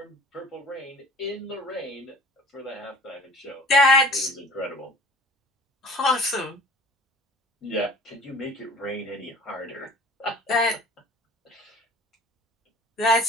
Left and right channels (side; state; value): both; normal; correlation 0.45